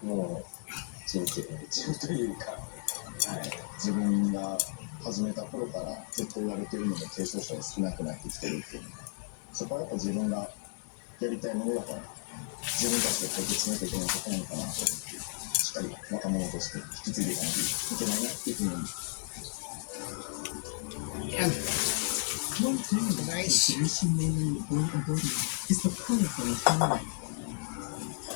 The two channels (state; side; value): silent; right; digital silence